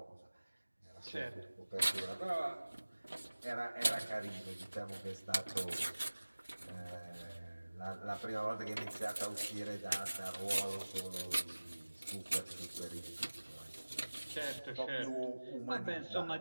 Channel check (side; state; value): both; inverted; correlation -1.00